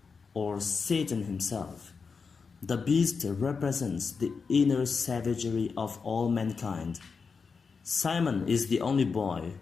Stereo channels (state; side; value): quieter; right; 5.2 dB